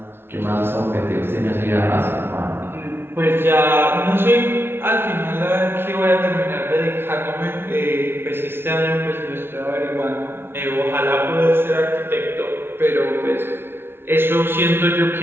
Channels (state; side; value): late; left; 0.11 ms